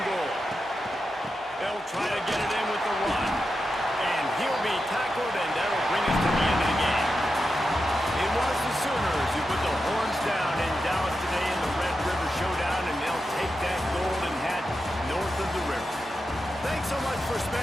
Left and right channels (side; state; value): both; normal; correlation 0.89